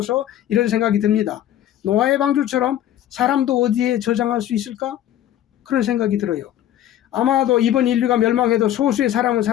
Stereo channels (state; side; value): quieter; right; 11.9 dB